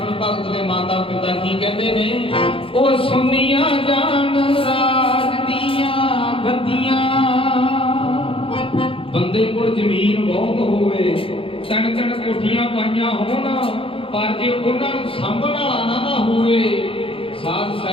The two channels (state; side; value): late; right; 0.26 ms